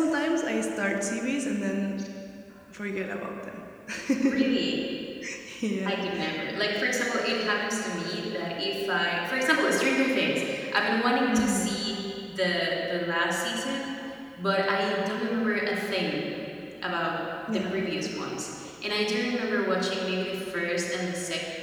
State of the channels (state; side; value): identical; both; correlation 1.00